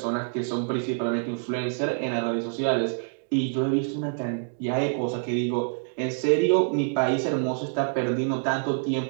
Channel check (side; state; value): left; silent; digital silence